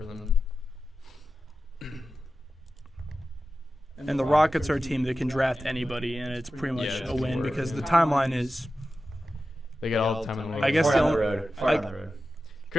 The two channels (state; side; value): normal; both; correlation 0.93